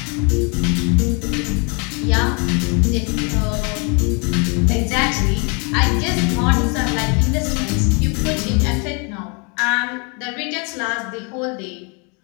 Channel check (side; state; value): right; quieter; 33.4 dB